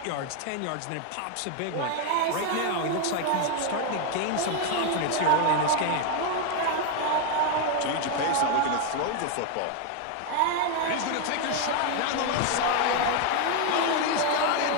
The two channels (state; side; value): different; both; correlation 0.01